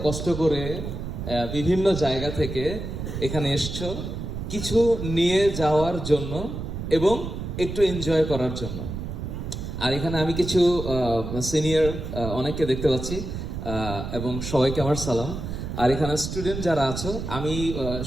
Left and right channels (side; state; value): right; noise; rumble, 6 dB below the sound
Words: কষ্ট করে বিভিন্ন জায়গা থেকে এখানে এসছো কিছু নিয়ে যাওয়ার জন্য এবং একটু এনজয় করার জন্য। আর এখানে আমি কিছু সিনিয়র অনেককে দেখতে পাচ্ছি, এবং সবাইকে আমার সালাম। আর এখানে স্টুডেন্ট যারা আছো, আমি